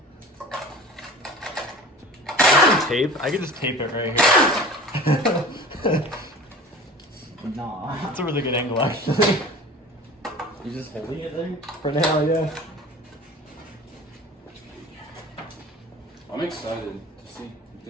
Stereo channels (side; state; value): both; normal; correlation 0.40